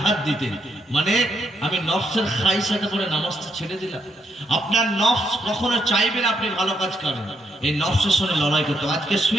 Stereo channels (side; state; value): both; normal; correlation 0.77